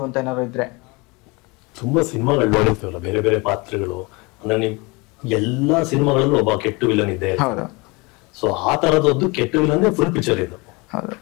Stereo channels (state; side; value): quieter; right; 26.6 dB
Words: ಅಂತ ಏನಾದ್ರು ಇದ್ರೆ? ತುಂಬಾ ಸಿನಿಮಾಗಳು ನೋಡಿರ್ತೀವಲ್ಲ, ಬೇರೆ ಬೇರೆ ಪಾತ್ರಗಳು. ಅಂದ್ರೆ ನೀವು ಎಲ್ಲಾ ಸಿನಿಮಾಗಳಲ್ಲೂ ಒಬ್ಬ ಕೆಟ್ಟ ವಿಲನ್ ಇದೆ. ಸೊ ಆ ತರದೊಂದು ಕೆಟ್ಟ ವಿಲನ್ ಫುಲ್ ಪಿಕ್ಚರ್ ಇದು.